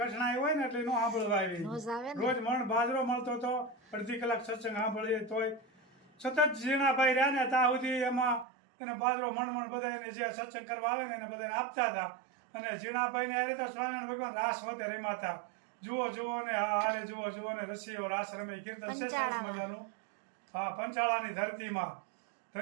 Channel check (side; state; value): left; drops out; at 8.5 s